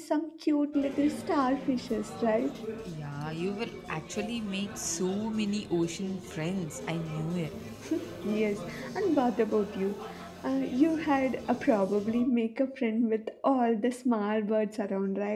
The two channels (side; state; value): both; identical; correlation 1.00